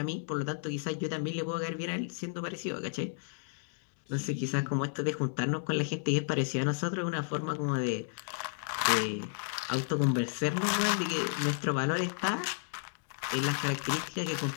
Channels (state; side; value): silent; right; digital silence